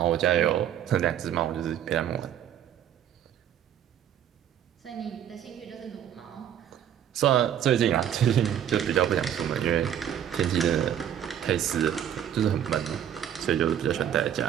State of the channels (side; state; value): left; quieter; 9.9 dB